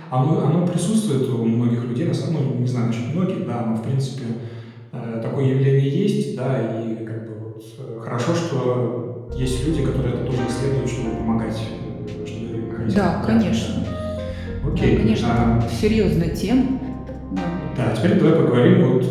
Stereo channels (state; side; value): identical; both; correlation 1.00